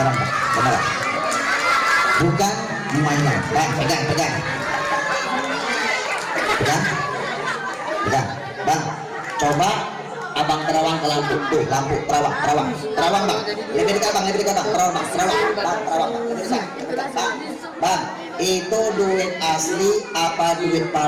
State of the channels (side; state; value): both; identical; correlation 1.00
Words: Bukan mainan. Bang, pegang. Bang, coba abang terawang ke lampu. Tuh, lampu terawang Bang. Lebih dekat Bang, terawang Bang. Bang, itu duit asli apa duit